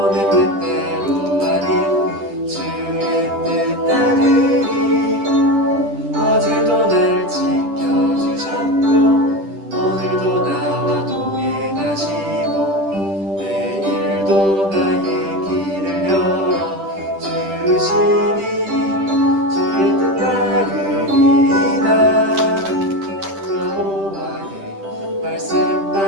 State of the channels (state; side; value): late; left; 10 ms